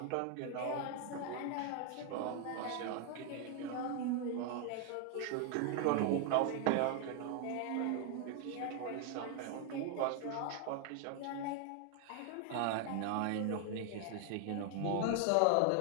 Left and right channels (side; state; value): both; different; correlation 0.00